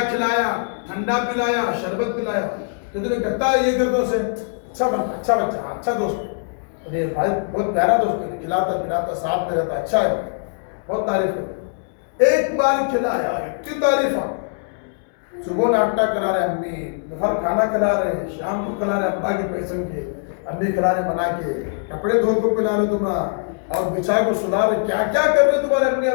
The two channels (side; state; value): right; silent; digital silence